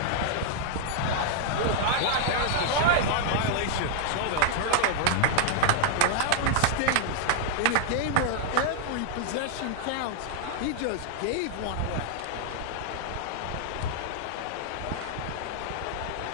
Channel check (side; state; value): both; different; correlation -0.01